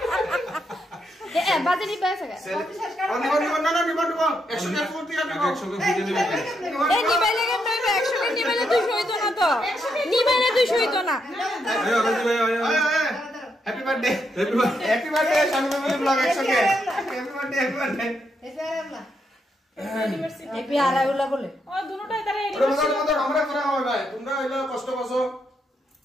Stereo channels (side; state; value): both; normal; correlation 0.80